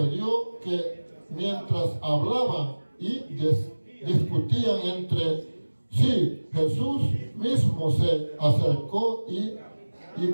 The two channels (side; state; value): both; inverted; correlation -1.00